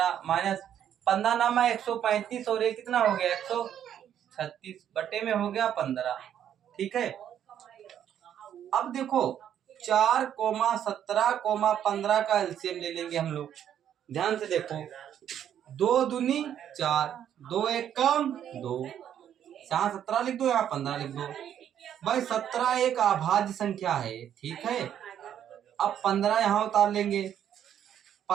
माइनस 15 नामा 135 और ये कितना हो गया? 136 बटे में हो गया 15। ठीक है, अब देखो 4 17 15 का एलसीएम ले लेंगे हम लोग। ध्यान से देखो, 2 दूनी 4, 2 एक कम 2, यहाँ 17 लिख दो, यहाँ 15 लिख दो भाई। 17 एक अभाज्य संख्या है। ठीक है, अब 15 यहाँ उतार लेंगे,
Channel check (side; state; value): left; quieter; 9.9 dB